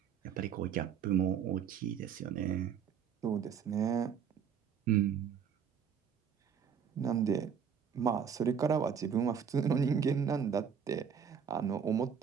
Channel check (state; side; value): quieter; left; 7.5 dB